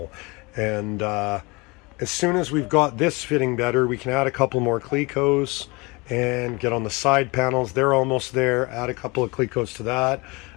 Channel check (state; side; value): quieter; right; 26.0 dB